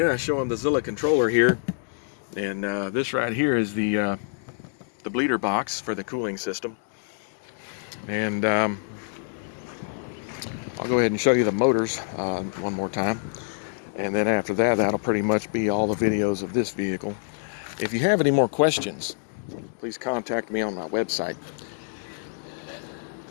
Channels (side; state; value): right; silent; digital silence